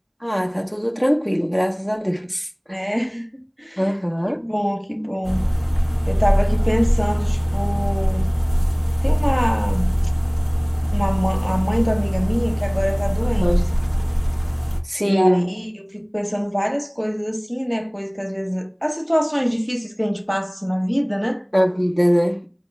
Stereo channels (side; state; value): both; identical; correlation 1.00